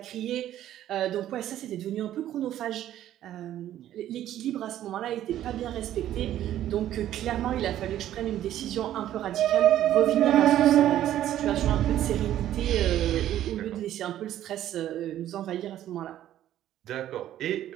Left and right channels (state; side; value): quieter; left; 12.2 dB